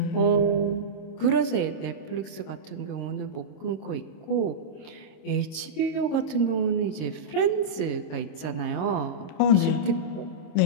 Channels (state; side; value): late; right; 26 ms